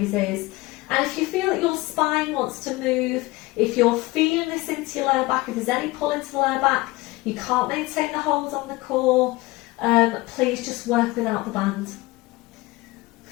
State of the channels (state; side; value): quieter; right; 21.1 dB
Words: And if you feel that your spine wants to move, if you're feeling this into your lower back, if there's any pull into the lower back, you can't maintain the hold on the core, please just work without the band.